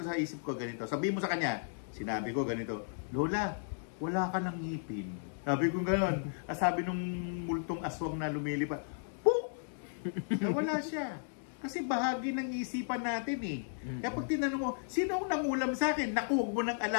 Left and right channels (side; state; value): right; silent; digital silence